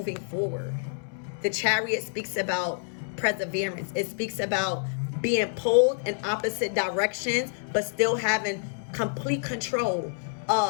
forward. The Chariot speaks about perseverance. It speaks about being pulled in opposite directions, but still having complete control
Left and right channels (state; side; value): silent; right; 60 dB below the other